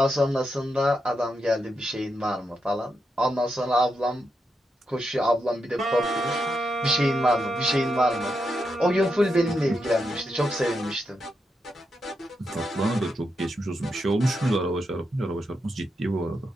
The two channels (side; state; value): both; normal; correlation 0.84